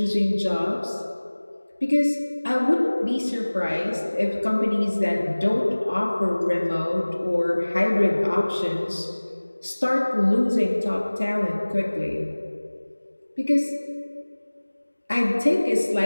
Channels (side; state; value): both; inverted; correlation -1.00